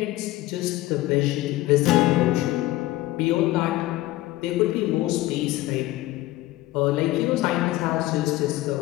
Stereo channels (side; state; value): right; quieter; 17.0 dB